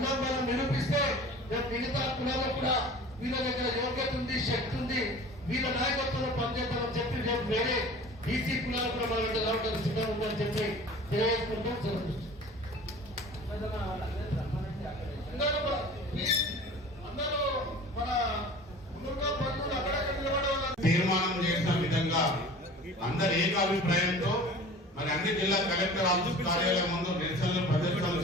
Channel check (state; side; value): normal; both; correlation 0.42